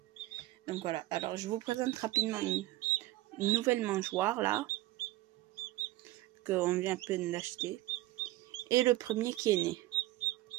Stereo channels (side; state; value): left; quieter; 16.9 dB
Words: Donc voilà, alors je vous présente rapidement une nouvelle mangeoire là. Qu'on vient à peine d'acheter. Et le premier qui est né.